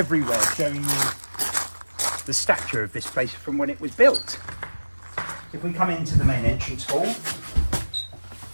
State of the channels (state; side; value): inverted; both; correlation -1.00